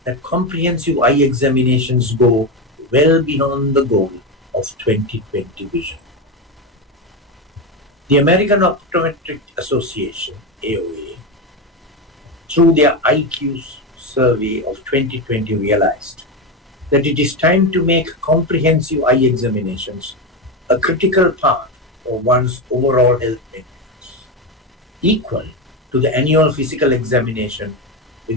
that comprehensive eye examinations go well beyond the goal of 20/20 vision. The American Optometric Association, AOA, through their IQs survey of 2020 realized that it is time to make comprehensive eye examinations a critical part of one's overall health maintenance, equal to the annual physical examination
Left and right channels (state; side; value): normal; both; correlation 0.14